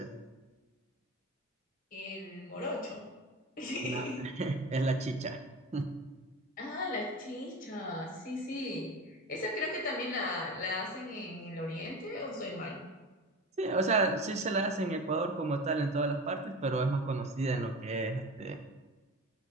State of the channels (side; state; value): both; normal; correlation 0.30